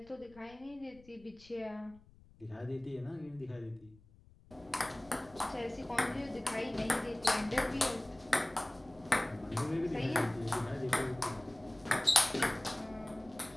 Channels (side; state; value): left; noise; rumble, 25 dB below the sound